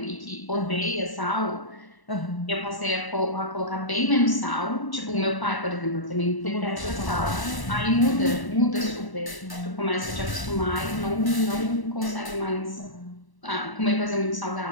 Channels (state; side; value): late; right; 1.0 ms